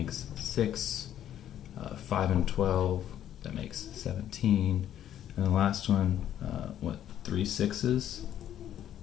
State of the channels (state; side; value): quieter; right; 11.0 dB